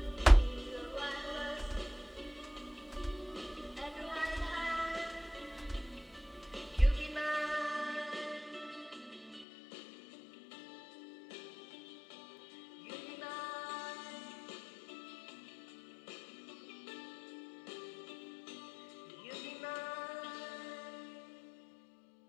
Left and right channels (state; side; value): drops out; right; at 9.5 s